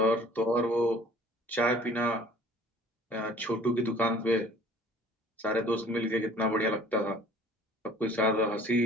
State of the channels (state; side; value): normal; both; correlation 0.51